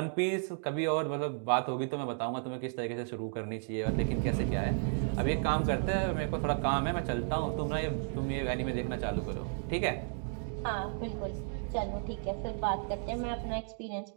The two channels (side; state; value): left; silent; 56 dB below the other